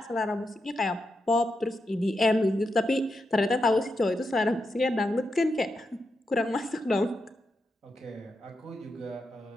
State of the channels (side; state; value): both; normal; correlation 0.86